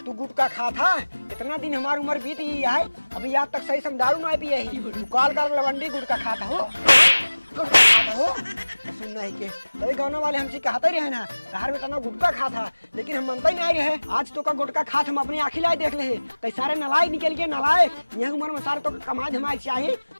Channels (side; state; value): both; inverted; correlation -1.00